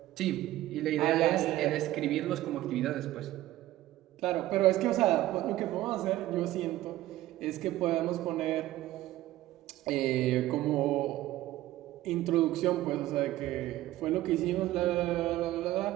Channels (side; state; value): left; quieter; 15.5 dB